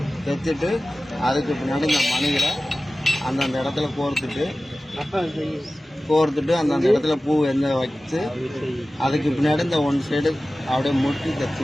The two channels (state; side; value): normal; both; correlation 0.96